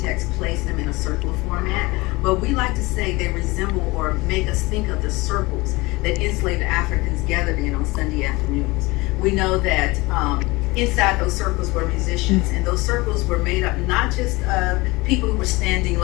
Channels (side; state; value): right; quieter; 22.8 dB